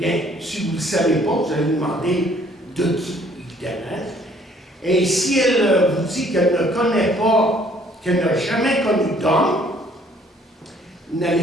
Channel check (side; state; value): both; normal; correlation 0.60